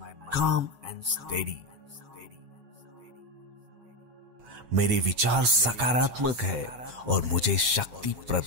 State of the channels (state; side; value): late; left; 8.3 ms